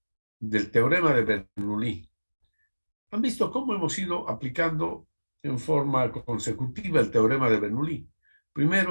del teorema de Bernoulli. ¿Han visto cómo hemos ido aplicando en forma consecutiva el teorema de Bernoulli?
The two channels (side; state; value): both; inverted; correlation -1.00